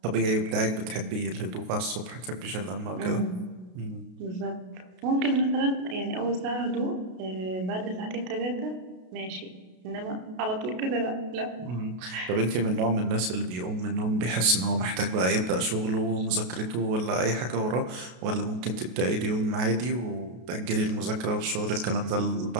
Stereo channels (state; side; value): late; left; 33 ms